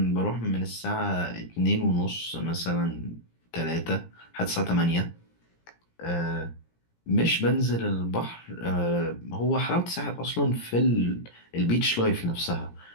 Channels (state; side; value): late; right; 17 ms